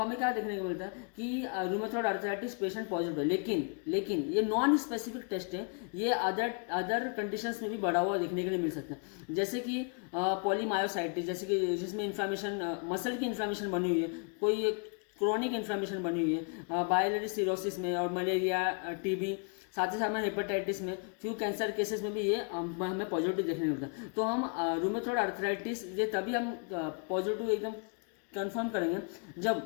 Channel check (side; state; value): right; quieter; 38.8 dB